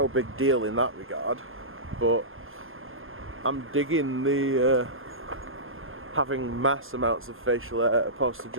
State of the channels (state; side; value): late; left; 0.59 ms